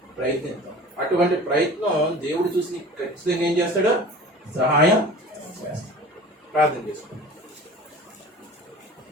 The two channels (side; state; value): both; normal; correlation 0.41